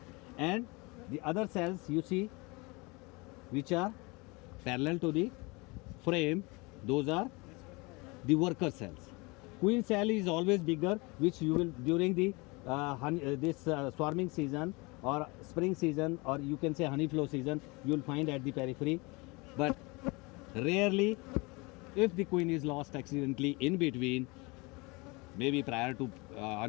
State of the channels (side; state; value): right; quieter; 26.4 dB